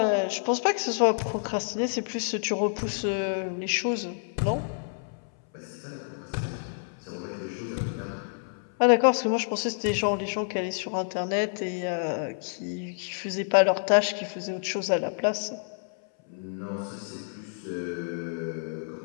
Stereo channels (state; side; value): silent; right; 59 dB below the other